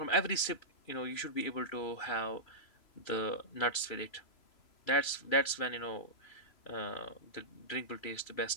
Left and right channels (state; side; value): late; right; 3.0 ms